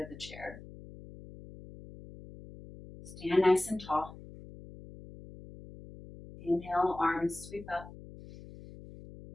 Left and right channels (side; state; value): left; noise; hum, 16 dB below the sound